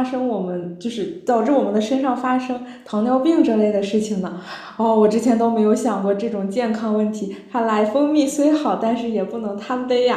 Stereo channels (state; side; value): identical; both; correlation 1.00